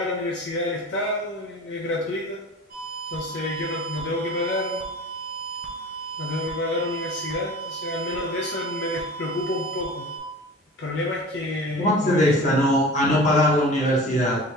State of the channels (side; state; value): both; normal; correlation 0.38